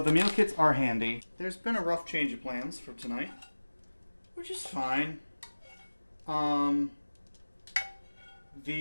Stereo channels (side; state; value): both; inverted; correlation -1.00